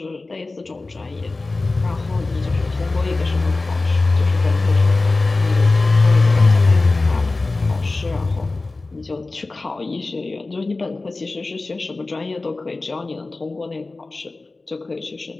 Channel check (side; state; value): right; quieter; 3.4 dB